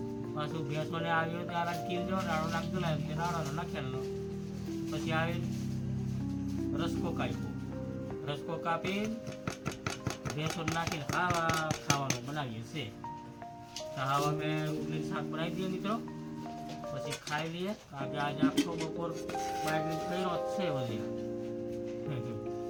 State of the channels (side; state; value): both; identical; correlation 1.00